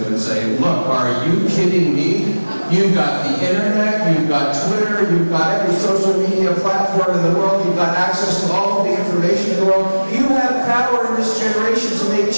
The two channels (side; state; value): both; inverted; correlation -1.00